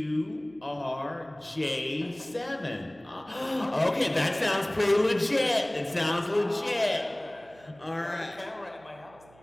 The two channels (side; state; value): right; noise; hum, 26 dB below the sound